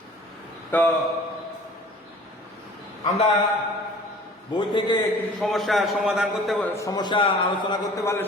তো আমরা বই থেকে কিছু সমস্যার সমাধান করতে, সমস্যা আলোচনা করতে পারলে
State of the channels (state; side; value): normal; both; correlation 0.47